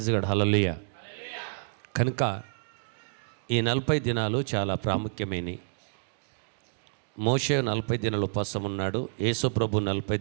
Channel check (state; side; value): silent; left; digital silence